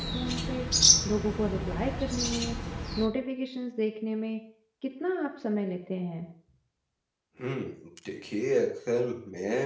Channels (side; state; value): both; identical; correlation 1.00